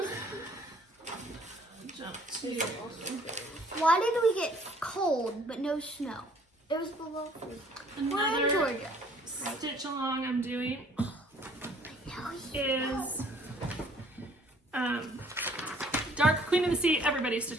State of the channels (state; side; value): normal; both; correlation 0.58